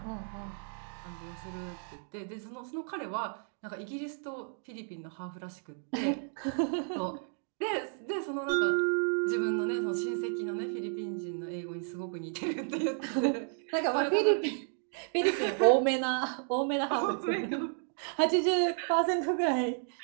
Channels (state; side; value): silent; left; 56 dB below the other